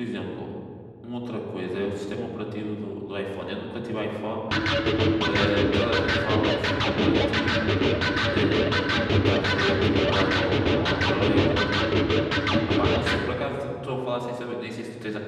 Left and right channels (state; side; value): identical; both; correlation 1.00